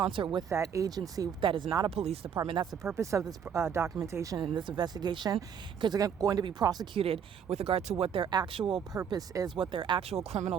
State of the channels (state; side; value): quieter; left; 7.8 dB